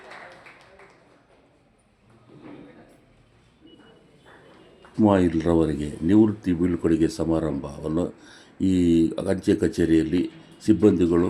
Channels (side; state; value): both; identical; correlation 1.00